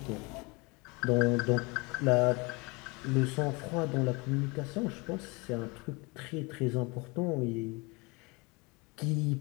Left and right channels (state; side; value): quieter; right; 27.2 dB